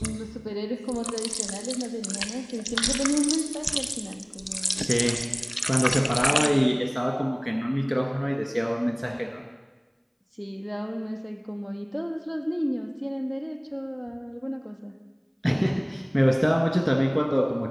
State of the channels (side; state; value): both; identical; correlation 1.00